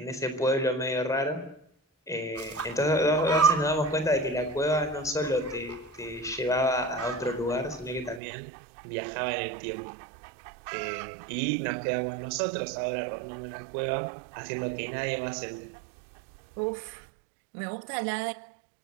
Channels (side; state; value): left; drops out; at 8.2 s